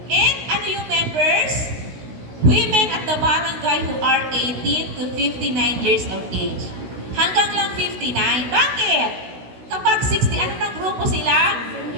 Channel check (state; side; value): late; left; 16 ms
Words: And ano yung members? Women at the barangay who are 18 to 59 years of age. Hanggang lang 59. Bakit? Kapag 60, ano ng grupo sila?